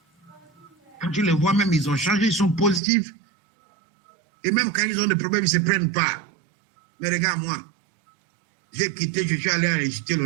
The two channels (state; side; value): drops out; left; at 2.8 s